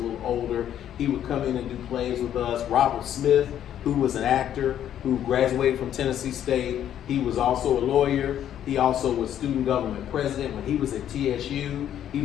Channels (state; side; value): quieter; right; 10.5 dB